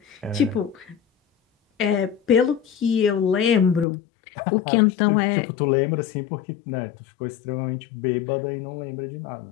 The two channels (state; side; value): drops out; right; at 3.9 s